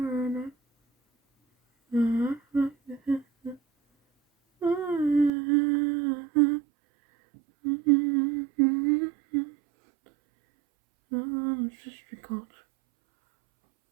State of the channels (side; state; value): left; drops out; at 5.3 s